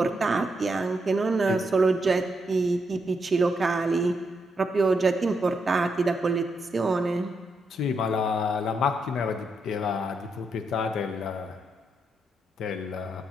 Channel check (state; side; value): normal; both; correlation 0.81